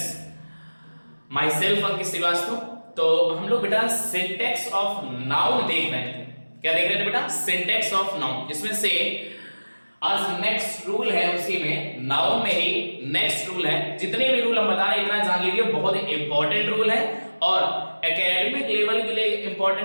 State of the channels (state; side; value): inverted; both; correlation -1.00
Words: my self Ankit Srivastava. तो हम लोग बेटा सिंटेक्स ऑफ नाउन देख रहे थे। क्या देख रहे थे बेटा? सिंटेक्स ऑफ नाउन, जिसमें से आज नेक्स्ट रूल है, उसी में नाउन में ही नेक्स्ट रूल है। जितने भी रूल हम बता रहे हैं इतना जान लीजिए, बहुत इंपॉर्टेंट रूल है और एकेडमिक लेवल के लिए